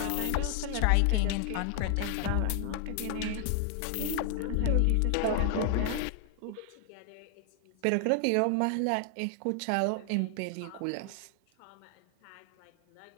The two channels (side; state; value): both; different; correlation 0.00